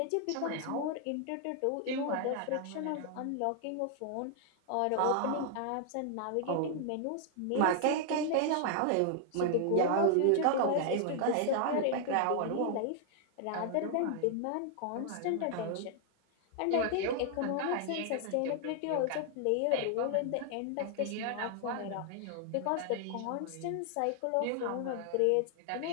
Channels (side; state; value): both; different; correlation 0.00